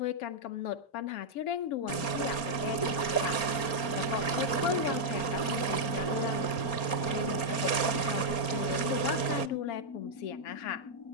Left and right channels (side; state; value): right; late; 4.3 ms